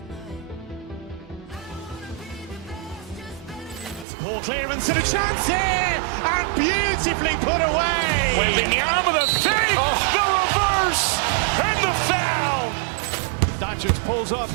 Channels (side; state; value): left; drops out; at 4.0 s